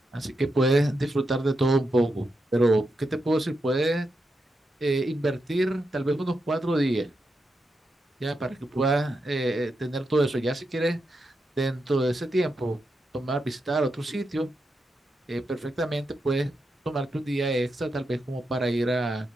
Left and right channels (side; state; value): both; normal; correlation 0.86